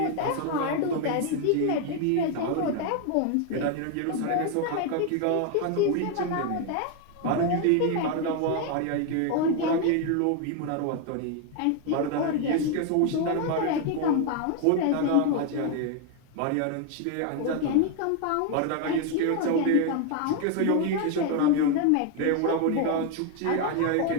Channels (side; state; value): both; different; correlation 0.01